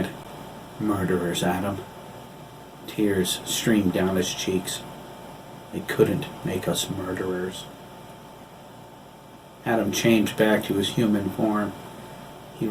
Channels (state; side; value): identical; both; correlation 1.00